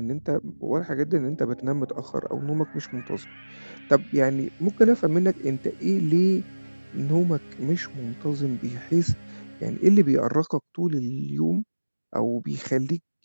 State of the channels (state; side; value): inverted; both; correlation -1.00